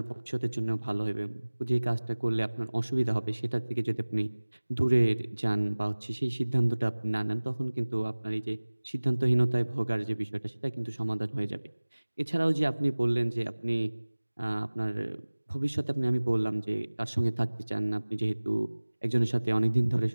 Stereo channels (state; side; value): inverted; both; correlation -1.00